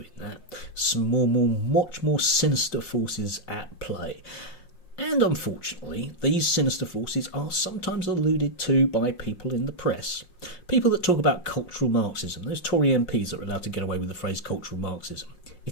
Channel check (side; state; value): right; late; 5.6 ms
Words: that. Some much more sinister forces at play. And unfortunately, these sinister forces are sometimes alluded to by people in the press. People that talk about cultural Marxism, those Tory MPs that are allowed to get away with the phrase cultural Marxism.